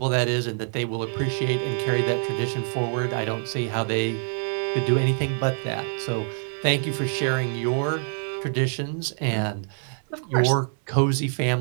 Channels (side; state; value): left; silent; 61 dB below the other